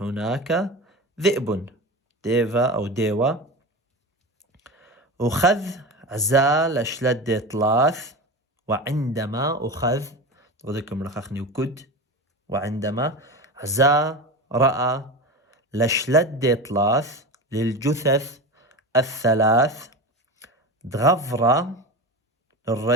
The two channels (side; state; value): both; normal; correlation 0.26